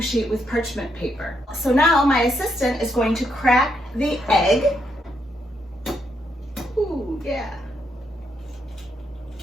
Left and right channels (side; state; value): both; normal; correlation 0.78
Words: sheet with parchment paper. So now my assistant is going to crack the egg. Ooh, yeah.